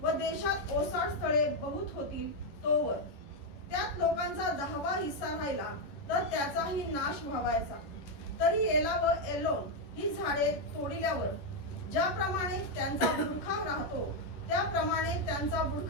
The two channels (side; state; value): right; late; 10 ms